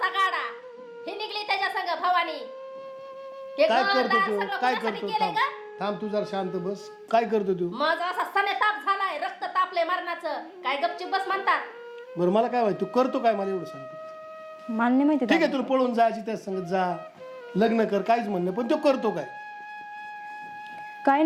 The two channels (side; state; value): both; identical; correlation 1.00